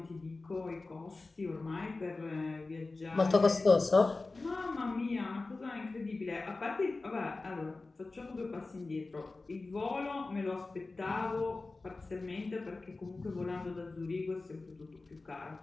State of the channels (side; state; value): right; quieter; 3.5 dB